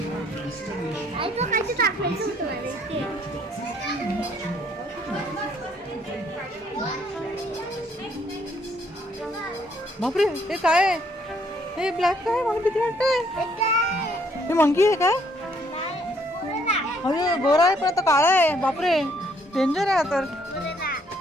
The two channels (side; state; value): both; normal; correlation 0.67